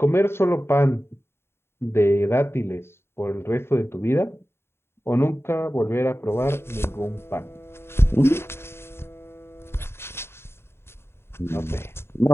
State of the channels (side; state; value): right; late; 0.12 ms